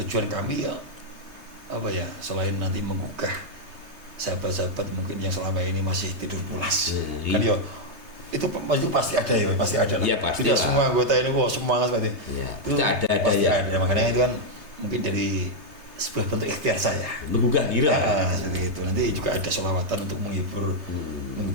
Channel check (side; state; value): left; late; 3.2 ms